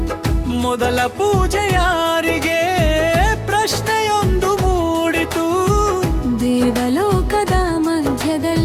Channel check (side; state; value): both; identical; correlation 1.00